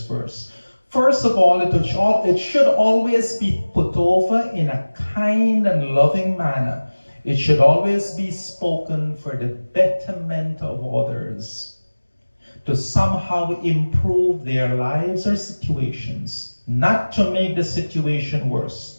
verse. First of all, it should always be put over in a kind and loving manner. It should always be spoken for the betterment of others, to somehow improve their lives or situations, not to make the situation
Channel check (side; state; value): both; inverted; correlation -1.00